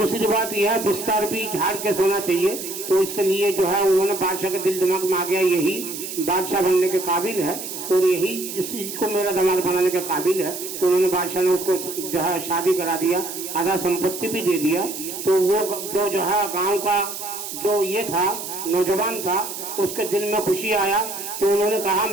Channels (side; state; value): right; noise; hiss, 8 dB below the sound